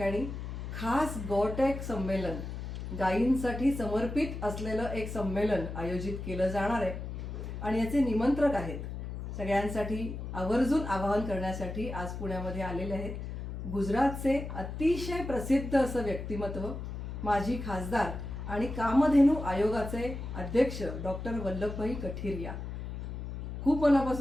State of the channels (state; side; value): noise; left; hum, 7 dB below the sound